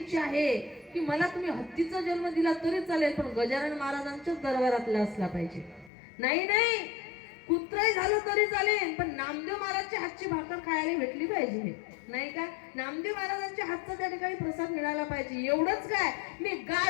आहे की मला तुम्ही हत्तीचा जन्म दिला तरी चालेल, पण गजानन महाराजांच्या दरबारातला असला पाहिजे. नाही कुत्रही झालं तरी चालेल, पण नामदेव महाराजच्या हातची भाकर खायला भेटली पाहिजे, नाही का? नामदेव महाराजांच्या हातचा त्या ठिकाणी प्रसाद मिळाला पाहिजे. एवढंच काय, मी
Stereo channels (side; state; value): right; drops out; at 5.9 s